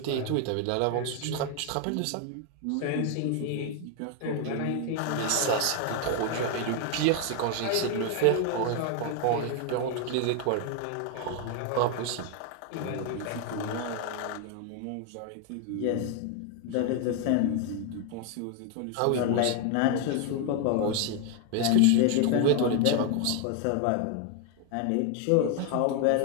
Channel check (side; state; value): both; different; correlation 0.01